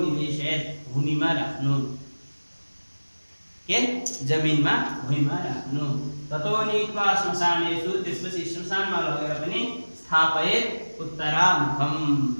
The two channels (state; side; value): inverted; both; correlation -1.00